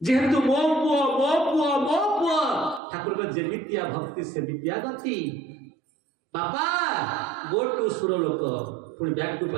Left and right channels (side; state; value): left; drops out; at 2.8 s